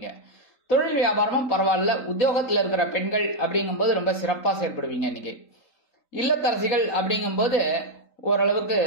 தொழில் வியாபாரமும் பரவாயில்ல. உத்தியோகத்துல இருக்கிற பெண்கள் அப்படிங்கும்போது ரொம்ப சிறப்பா செயல்படுவீங்க. இன்னைக்கு இல்லத்தரசிகள் அப்படிங்கும்போது ஓரளவுக்கு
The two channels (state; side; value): late; right; 3.8 ms